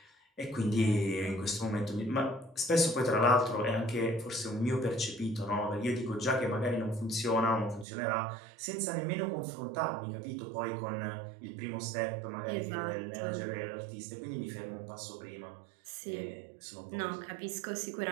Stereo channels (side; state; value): left; drops out; at 7.9 s